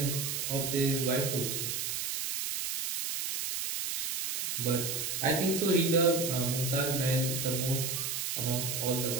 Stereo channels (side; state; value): right; noise; hiss, 2 dB below the sound